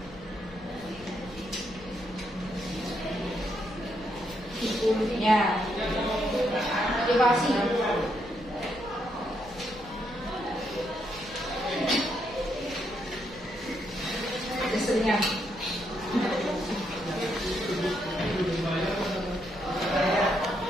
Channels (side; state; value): left; noise; rumble, 20 dB below the sound